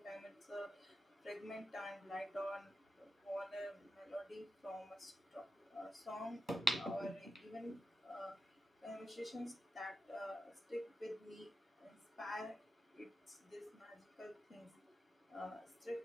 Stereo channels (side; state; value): both; normal; correlation 0.90